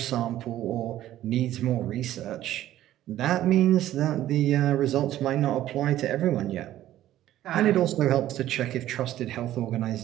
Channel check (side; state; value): left; quieter; 13.4 dB